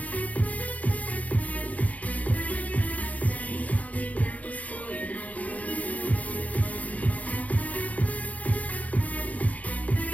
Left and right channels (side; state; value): right; late; 0.072 ms